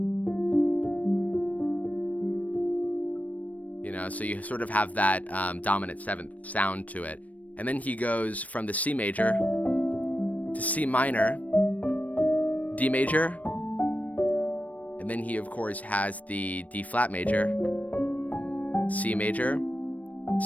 You know, so you sort of have that dominant 7th sound to it. And then he goes from the C major to C minor, D major, and then he of course has the D flat major, C major,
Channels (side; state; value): right; late; 0.070 ms